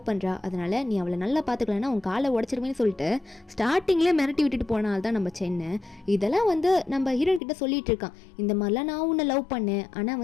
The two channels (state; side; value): drops out; right; at 7.4 s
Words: பண்ணுறா, அதனால நீ அவளை நல்லா பார்த்துக்கலன்னா உன் காலை உடச்சிருவேன்னு சொல்லிட்டு ஸ்டார்டிங்லேயே மிரட்டி விட்டுட்டு போனால் தான் நம்ம சென்னு. இதெல்லாம் வந்து நம்ம ஹீரோன் கிட்ட சொல்லிட்டு இருக்கான், இந்த மாதிரிலாம் நான் உன்னை லவ் பண்ணேன், ஆனால்